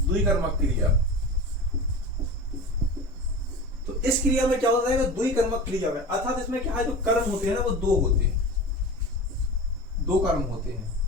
द्विकर्मक क्रिया, तो इस क्रिया में क्या होता है, द्विकर्मक क्रिया में, अर्थात इसमें क्या है, जो कर्म होते हैं ना वो दो होते हैं, दो कर्म होते हैं।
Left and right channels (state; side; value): normal; both; correlation 0.31